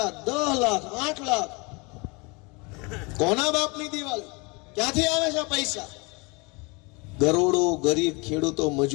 10 લાખ, 8 લાખ. કોના બાપની દિવાળી? ક્યાંથી આવે છે પૈસા? કરોડો ગરીબ ખેડૂતો,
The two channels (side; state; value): right; quieter; 28.4 dB